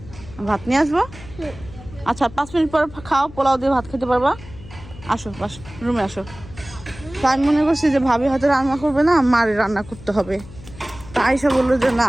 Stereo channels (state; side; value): noise; left; hum, 17 dB below the sound